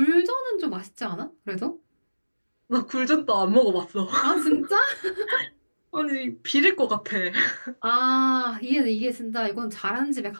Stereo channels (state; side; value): inverted; both; correlation -1.00